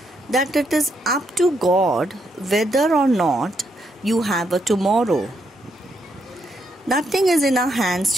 that it is up to God whether or not you have a tomorrow. Nothing is in our hands,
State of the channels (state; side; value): normal; both; correlation 0.77